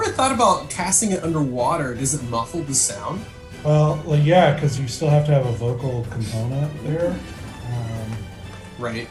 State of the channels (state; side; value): identical; both; correlation 1.00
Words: thought about casting it underwater. Does it muffle the sound? Well, yeah, because you still have to have a vocal component there. Right.